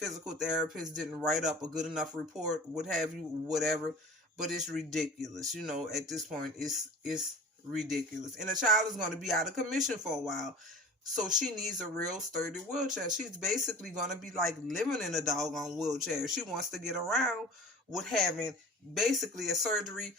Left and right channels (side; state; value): both; normal; correlation 0.40